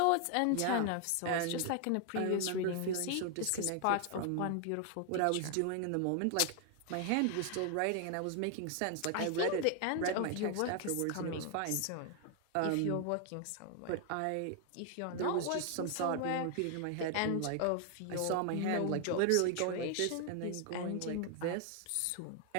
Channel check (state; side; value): different; both; correlation 0.00